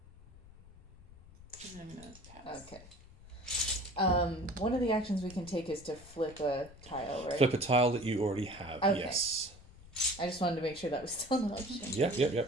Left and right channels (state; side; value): noise; left; rumble, 21 dB below the sound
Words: And I'm going to pass. Okay. One of the actions we can take is to flip a tile, right? Flip a tile that you already have, Okay. yes. I just wanted to make sure that was still an option.